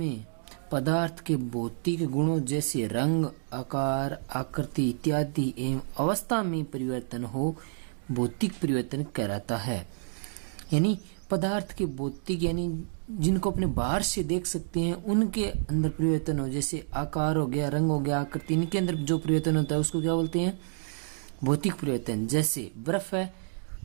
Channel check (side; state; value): left; silent; digital silence